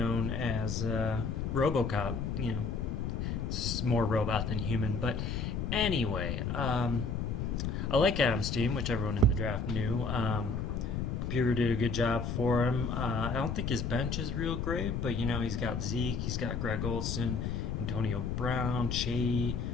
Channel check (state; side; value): noise; left; rumble, 1 dB below the sound